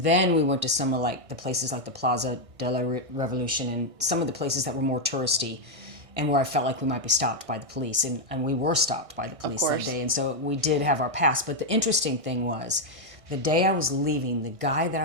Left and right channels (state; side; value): late; left; 1.6 ms